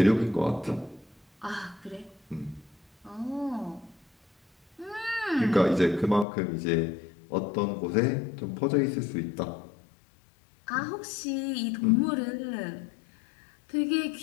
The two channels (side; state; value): right; drops out; at 6.2 s